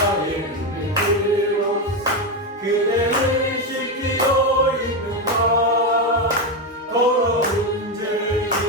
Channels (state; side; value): normal; both; correlation 0.10